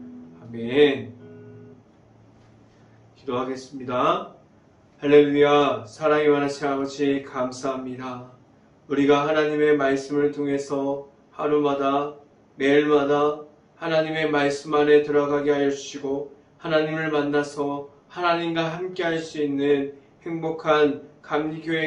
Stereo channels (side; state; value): both; identical; correlation 1.00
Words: 아멘. 기도하겠습니다. 할렐루야. 사랑이 많으신 아버지 감사합니다. 우리가 하나님의 말씀을 통해서 하루마다 매일마다 하나님의 말씀 안에 들어가게 하여 주시고 하나님을 만나서 하나님과 함께 할 수 있는 행복한